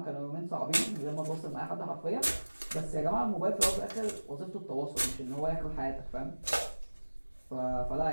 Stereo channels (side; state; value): both; inverted; correlation -1.00